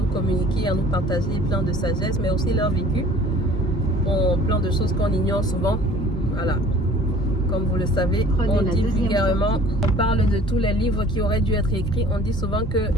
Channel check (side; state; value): both; normal; correlation 0.50